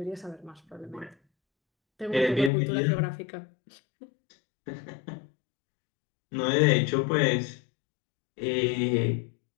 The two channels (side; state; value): right; drops out; at 2.5 s